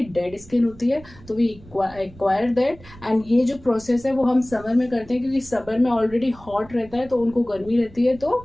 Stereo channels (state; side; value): noise; right; rumble, 21 dB below the sound